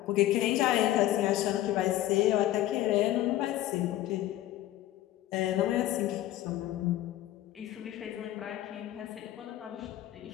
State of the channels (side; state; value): right; quieter; 14.2 dB